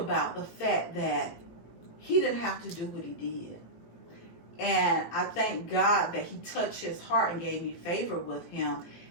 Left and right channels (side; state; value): right; late; 18 ms